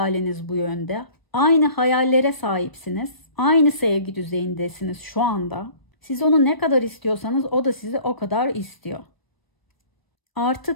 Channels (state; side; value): late; right; 1.0 ms